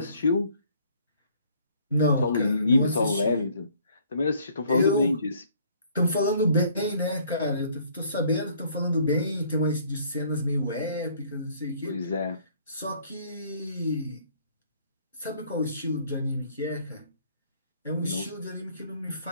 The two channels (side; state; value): both; inverted; correlation -0.60